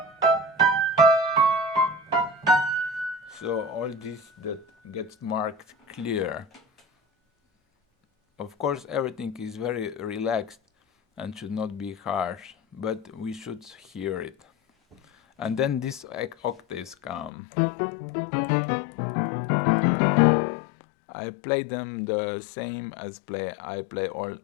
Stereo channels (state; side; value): drops out; right; at 17.3 s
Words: So all this that gets marked clear. Of course, everything is very relaxed and should not be harsh, but we should hear it. And then these octaves come. I play them the same as I play all